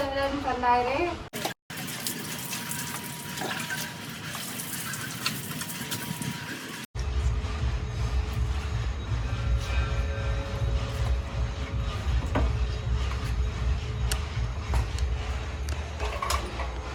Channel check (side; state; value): both; identical; correlation 1.00